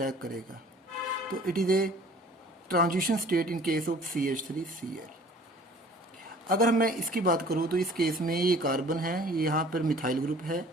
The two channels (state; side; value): normal; both; correlation 0.50